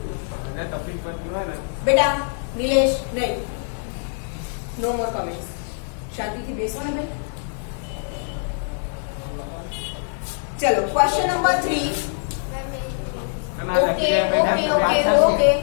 बेटा। नीलेश नहीं, नो मोर कमेंट्स। शांति થી બેસો ને ભાઈ। चलो question number 3। Okay okay okay okay,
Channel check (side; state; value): right; silent; digital silence